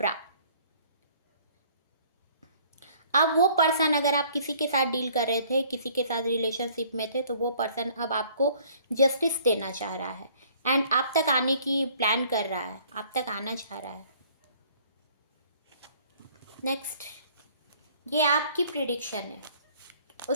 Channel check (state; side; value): inverted; both; correlation -0.57